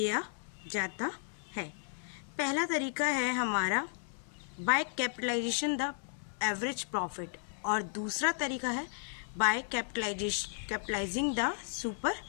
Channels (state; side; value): silent; right; 55 dB below the other